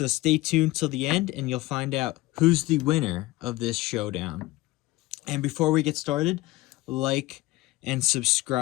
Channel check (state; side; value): quieter; right; 19.1 dB